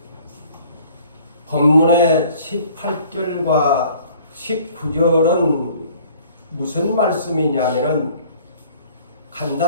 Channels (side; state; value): both; inverted; correlation -0.54